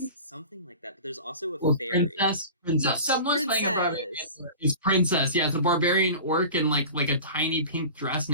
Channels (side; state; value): both; inverted; correlation -0.36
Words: Something like that. But there's also a Or fairy. princess. Someone's playing a barbarian. Princess. It's princess. Yeah, it's a barbarian orc in like a tiny pink dress